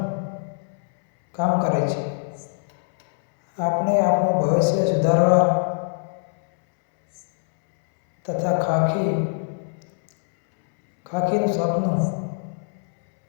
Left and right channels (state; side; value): silent; right; 64 dB below the other